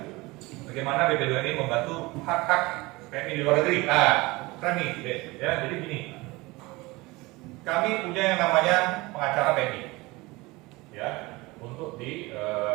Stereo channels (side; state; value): left; quieter; 22.4 dB